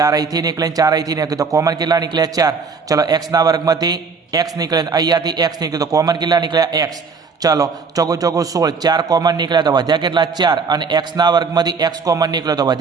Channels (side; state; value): left; quieter; 5.1 dB